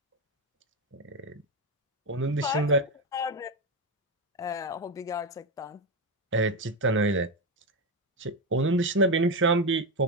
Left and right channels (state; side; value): normal; both; correlation 0.11